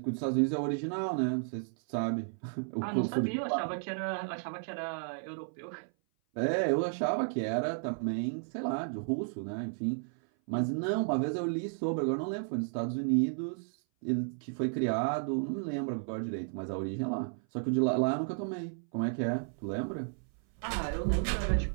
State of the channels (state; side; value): silent; left; 56 dB below the other